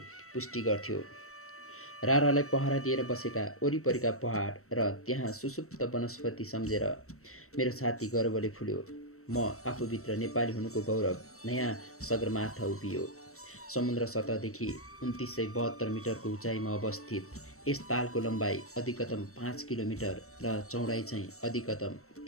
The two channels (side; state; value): right; late; 0.64 ms